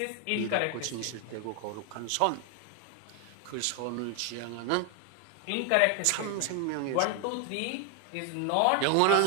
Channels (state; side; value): different; both; correlation 0.00